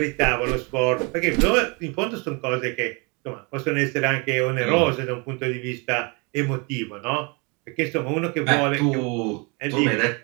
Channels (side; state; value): left; quieter; 30.7 dB